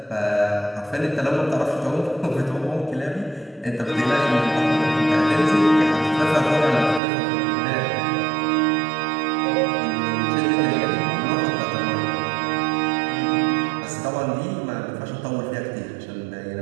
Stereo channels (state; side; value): drops out; left; at 7.0 s